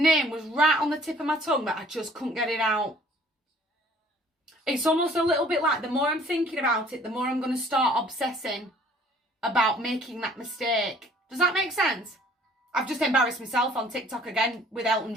was right on the tip of my tongue, but I just couldn't get it out. It's almost a little bit like the more I'm thinking about it, the more I'm going to start obsessing about making that mistake. Does that make sense? I've just embarrassed myself on TikTok again with Elton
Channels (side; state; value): both; normal; correlation 0.56